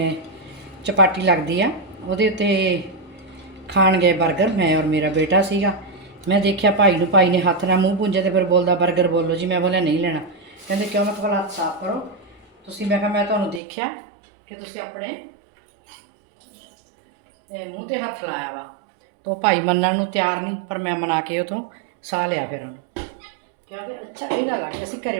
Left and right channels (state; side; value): drops out; left; at 13.6 s